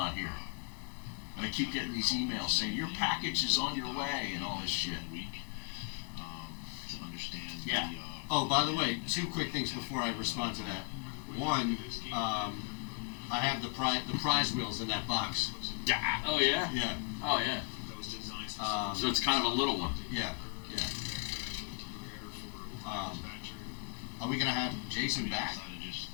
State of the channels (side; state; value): right; quieter; 37.1 dB